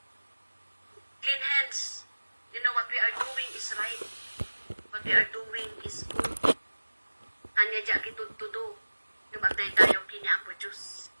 Clean hands, you know what we are doing is right. What we are doing is good. Anya dya kitudtudo, lumatay tayo kiniapo Diyos.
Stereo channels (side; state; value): both; inverted; correlation -1.00